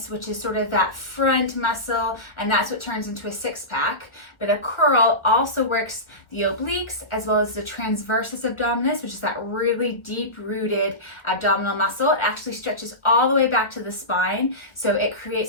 which is sort of that front muscle, and that's what turns into a six-pack. But a curl also works the obliques as well as the transversus abdominis, which is that really deep-rooted abdominal muscle. It actually stretches all the way back to the spine, so it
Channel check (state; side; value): late; right; 1.2 ms